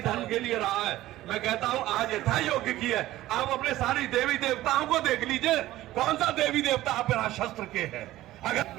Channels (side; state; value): left; quieter; 15.7 dB